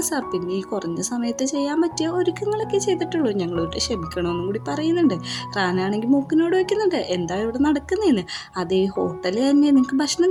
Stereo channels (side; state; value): both; identical; correlation 1.00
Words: സാർ, പിന്നെ ഈ കുറഞ്ഞ സമയത്ത് ചെയ്യാൻ പറ്റിയ ഒരുക്കങ്ങളൊക്കെ ചെയ്തിട്ടുള്ളൂ, ഞങ്ങളോട്ട് ക്ഷമിക്കണമെന്നും കൂടി പറയുന്നുണ്ട്. റാനാണെങ്കിൽ മൂക്കിനോട് വയ്ക്കുന്നുണ്ട്, എന്താ ഇവിടെ നടക്കുന്നതെന്ന്. അതേ ഹോട്ടലിൽ തന്നെ നിങ്ങൾക്ക് ഭക്ഷണം